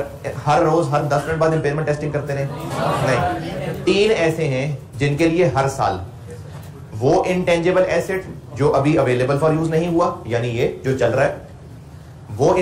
हर रोज हर 10 मिनट बाद इम्पेयरमेंट टेस्टिंग करते रहे? नहीं। 3 ऐसे हैं जिनके लिए हर साल वो इंटेंजिबल एसेट जो अभी अवेलेबल फॉर यूज नहीं हुआ, यानी ये जो चल रहा है, वो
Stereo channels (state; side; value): identical; both; correlation 1.00